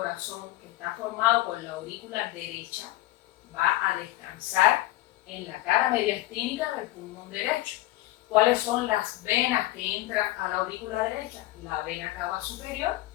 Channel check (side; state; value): right; quieter; 17.2 dB